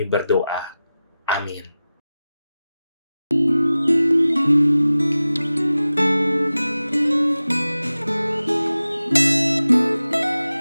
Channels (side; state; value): both; inverted; correlation -0.95